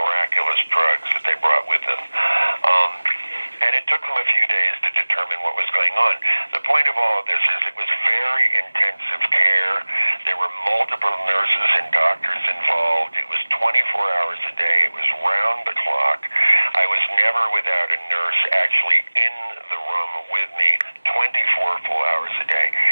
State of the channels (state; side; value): inverted; both; correlation -1.00